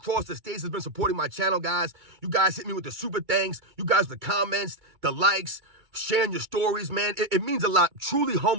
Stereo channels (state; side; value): late; left; 2.3 ms